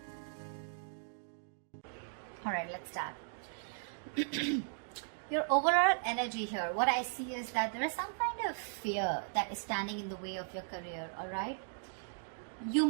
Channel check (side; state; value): left; silent; digital silence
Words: All right, let's start. Your overall energy here, what I see is that there is some kind of fear that is standing in the way of your career. All right, you